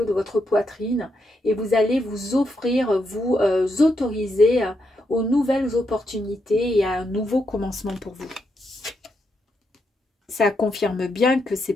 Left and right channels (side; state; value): both; normal; correlation 0.81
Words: de votre poitrine et vous allez vous offrir, vous autoriser aux nouvelles opportunités et à un nouveau commencement pour vous. Ça confirme bien que c'est